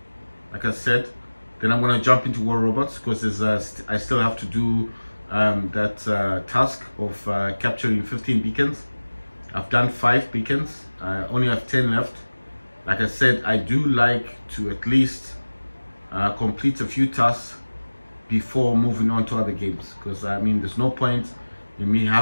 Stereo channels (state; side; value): inverted; both; correlation -1.00